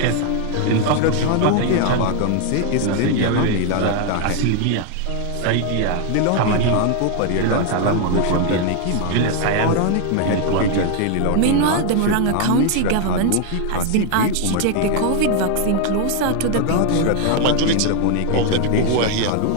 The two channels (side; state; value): both; different; correlation 0.00